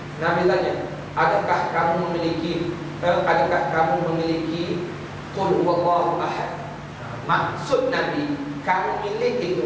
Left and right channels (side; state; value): both; identical; correlation 1.00